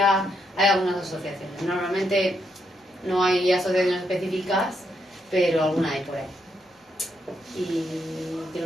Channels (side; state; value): both; normal; correlation 0.78